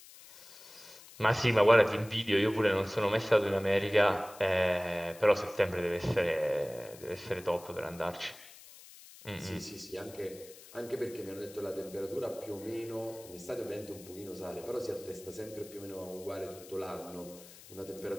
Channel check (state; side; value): noise; left; hiss, 19 dB below the sound